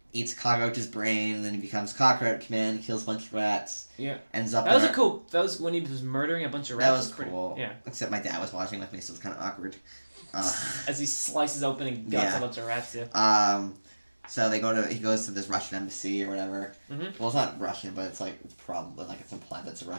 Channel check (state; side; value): inverted; both; correlation -1.00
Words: eats a cockroach's brain. And then he becomes Cockroach Man. Kills a bunch of rats. Yeah. Ends up. That was when he was murdering a bunch of rats. That was cool. Yeah. Except my dad was watching with me, so it was kind of awkward. As he slices open and guts a bunch of rats. Yeah. So he goes to this Russian embassy or whatever. Mm-hmm. Well, it's not Russian, but it's probably it's implied that's a